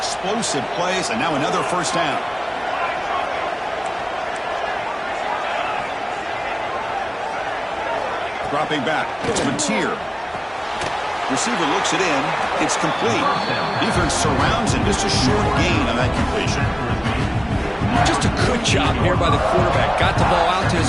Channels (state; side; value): identical; both; correlation 1.00